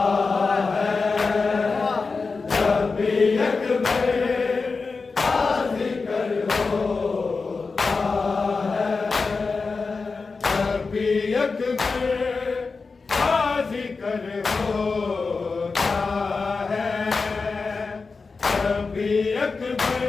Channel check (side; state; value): right; quieter; 4.4 dB